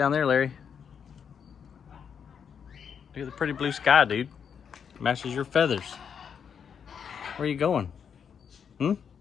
there, Larry. Look at the pretty blue sky, dude. Matches your feathers. Where are you going? You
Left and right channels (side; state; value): right; quieter; 7.3 dB